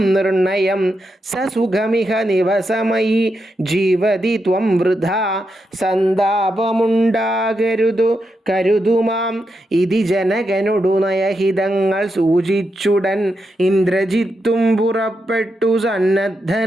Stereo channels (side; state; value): both; normal; correlation 0.85